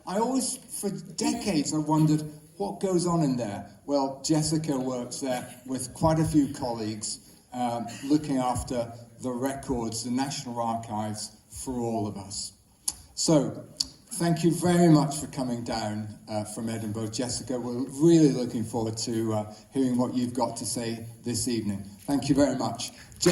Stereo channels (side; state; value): both; identical; correlation 1.00